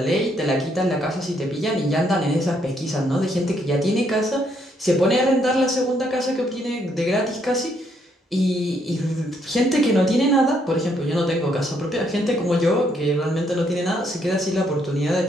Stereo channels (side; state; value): both; normal; correlation 0.72